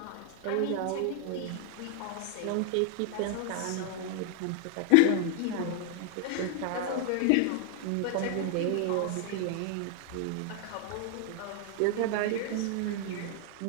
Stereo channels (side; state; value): both; different; correlation 0.00